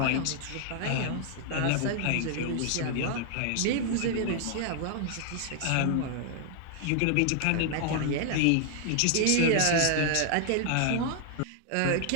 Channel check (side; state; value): both; different; correlation 0.00